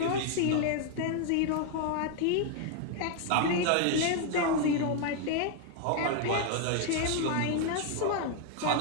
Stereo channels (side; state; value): both; different; correlation 0.00